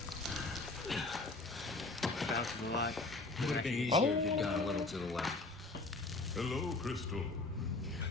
Bounces a lot. Would have been easier if you'd gone a little to the left. Hello, Crystal.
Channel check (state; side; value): quieter; right; 3.2 dB